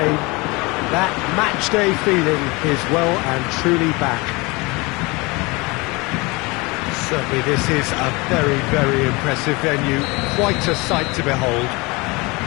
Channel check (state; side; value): quieter; right; 25.3 dB